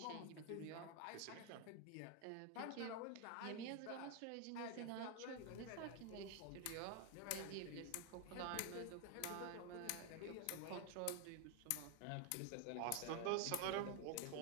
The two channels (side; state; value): both; different; correlation 0.01